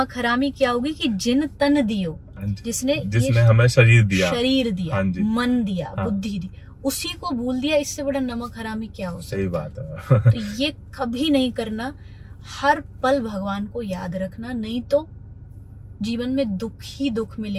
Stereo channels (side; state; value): both; identical; correlation 1.00